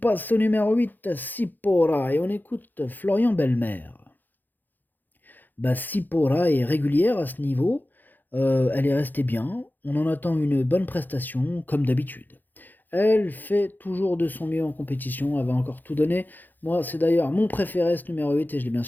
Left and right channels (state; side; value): late; right; 0.087 ms